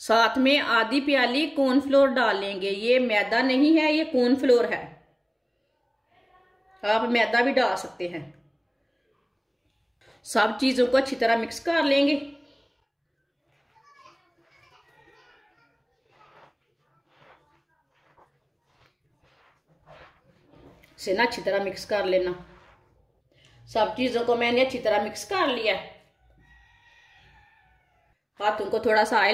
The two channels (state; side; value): identical; both; correlation 1.00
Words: साथ में आधी प्याली कॉर्नफ्लोर डाल लेंगे। ये मैदा नहीं है, ये कॉर्नफ्लोर है। आप मैदा भी डाल सकते हैं। सब चीजों को अच्छी तरह मिक्स कर लेंगे। इसे ना अच्छी तरह मिक्स कर लेना। सब चीजों को मैंने अच्छी तरह मिक्स कर लिया। हाथों को थोड़ा सा